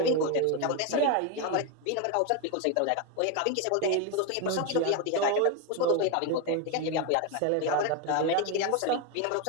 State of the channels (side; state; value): both; different; correlation 0.02